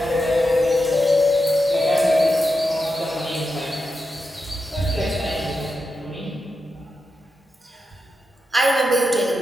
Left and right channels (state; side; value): normal; both; correlation 0.87